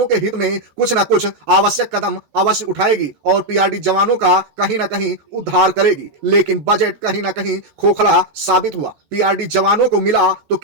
के हित में कुछ न कुछ आवश्यक कदम अवश्य उठाएगी और पीआरडी जवानों का कहीं ना कहीं उद्धार करेगी, लेकिन बजट कहीं ना कहीं खोखला साबित हुआ। पीआरडी जवानों को मिला तो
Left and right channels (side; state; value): left; late; 14 ms